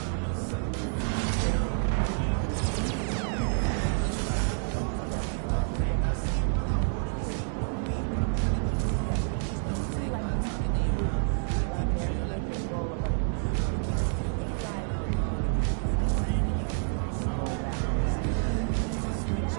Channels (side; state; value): left; silent; 59 dB below the other